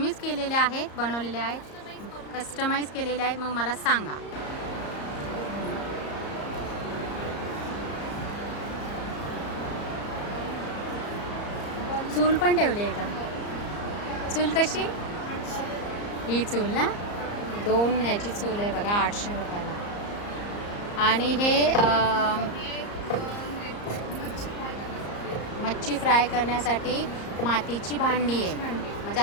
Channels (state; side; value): late; right; 34 ms